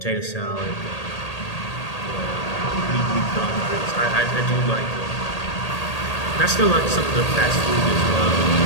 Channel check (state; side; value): late; right; 1.8 ms